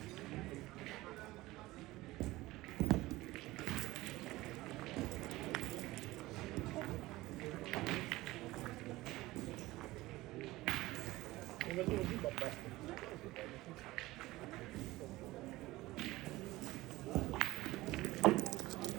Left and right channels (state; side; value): quieter; left; 18.7 dB